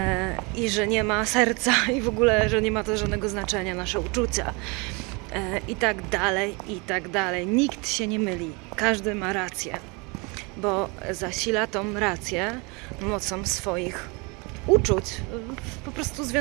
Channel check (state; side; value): quieter; left; 29.1 dB